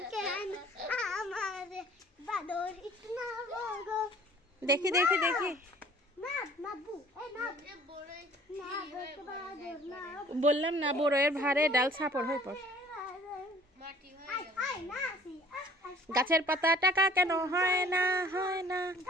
দেখি দেখি দেখি, বললাম না বড়ের ভারে ডাল ছাপড় হয়ে পড়। গাছের পাতা টাকা কেন হয় না, হয় না।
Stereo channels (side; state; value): both; normal; correlation 0.53